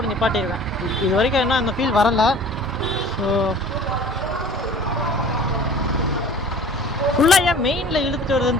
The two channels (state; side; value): normal; both; correlation 0.45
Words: நிப்பாட்டிடுவேன். இது வரைக்கும் என்ன அந்த ஃபீல் வரலை. ஸோ ஃபுல்லாக ஏன் மெயினில் இழுத்துட்டு